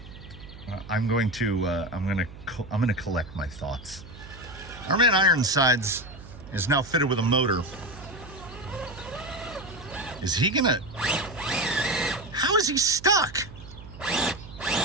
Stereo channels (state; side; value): noise; right; hum, 16 dB below the sound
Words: I'm going to collect my thoughts. Our man Ironsides is now fitted with a motor. Is he gonna? How is he stuck?